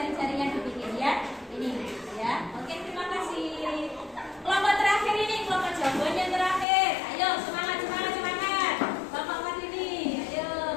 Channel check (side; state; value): right; drops out; at 6.7 s